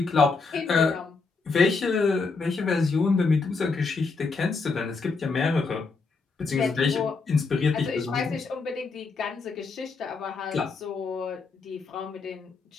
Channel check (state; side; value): quieter; right; 4.4 dB